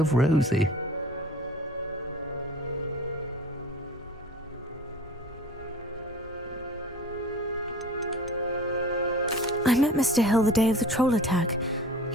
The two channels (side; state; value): both; normal; correlation 0.41